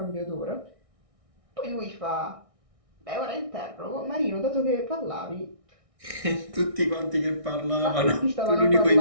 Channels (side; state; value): left; late; 1.6 ms